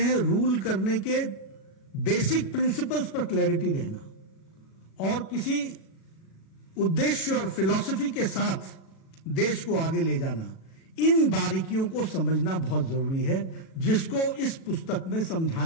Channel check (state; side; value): late; right; 37 ms